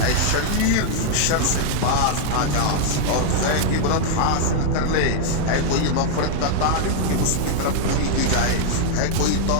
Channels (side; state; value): both; different; correlation 0.00